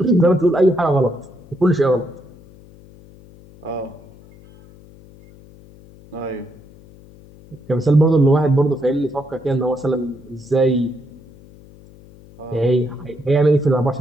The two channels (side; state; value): left; noise; hum, 23 dB below the sound